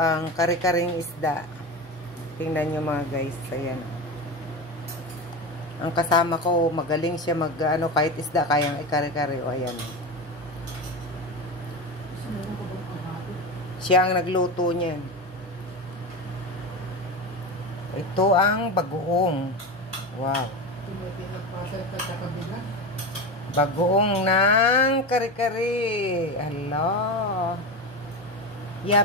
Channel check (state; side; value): normal; both; correlation 0.22